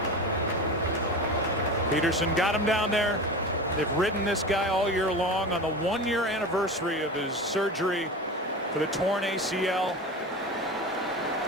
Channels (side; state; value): both; normal; correlation 0.29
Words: Peterson got him down there. They've ridden this guy all year long. On the 1-year anniversary of his surgery for the torn ACL.